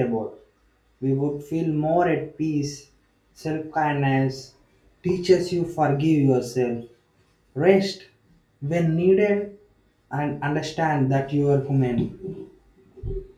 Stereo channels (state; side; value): identical; both; correlation 1.00